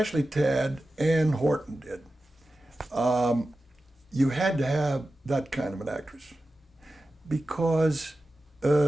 Tad and Horton did. You had to have that kind of an actress because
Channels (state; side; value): normal; both; correlation 0.94